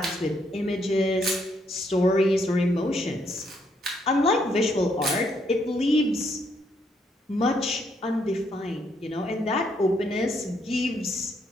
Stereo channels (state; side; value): normal; both; correlation 0.73